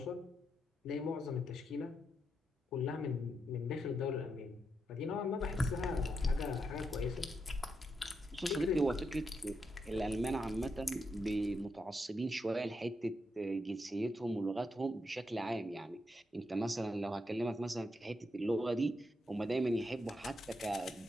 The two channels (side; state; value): both; normal; correlation 0.82